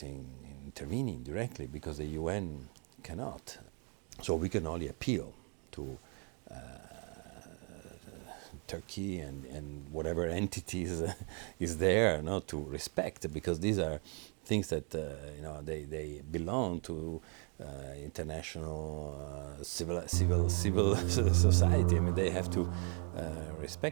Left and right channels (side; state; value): left; quieter; 39.6 dB